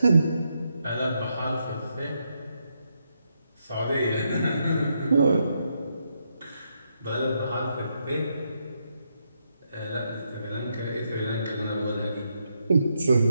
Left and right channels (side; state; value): both; inverted; correlation -0.80